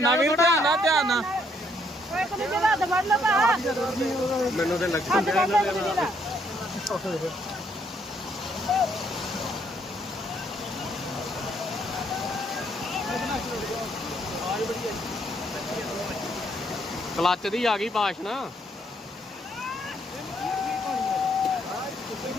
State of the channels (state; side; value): normal; both; correlation 0.70